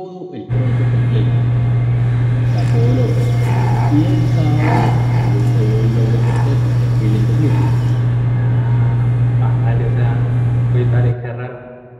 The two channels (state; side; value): identical; both; correlation 1.00